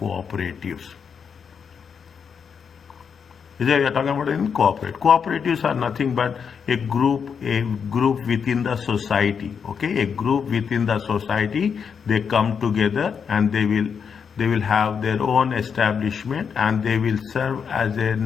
We are talking about in cooperatives are nothing but a group within the society. Okay, a group within the society, they come together and they will have their own establishment, and they will serve as a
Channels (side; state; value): right; quieter; 6.6 dB